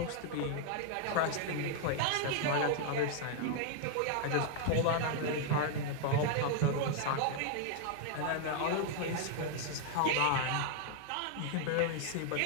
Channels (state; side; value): different; both; correlation 0.00